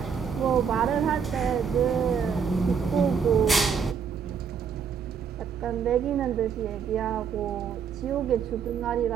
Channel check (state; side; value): quieter; left; 6.8 dB